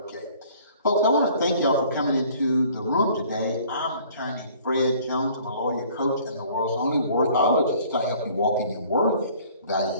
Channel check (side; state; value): both; inverted; correlation -0.54